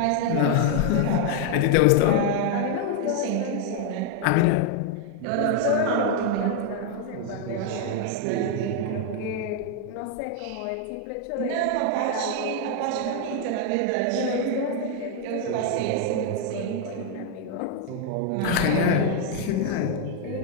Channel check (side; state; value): both; different; correlation 0.00